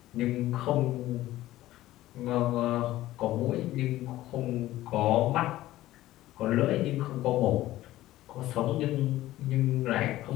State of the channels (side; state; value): right; quieter; 15.6 dB